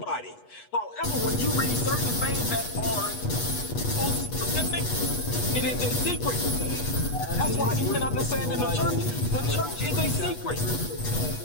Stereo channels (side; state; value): right; late; 8.2 ms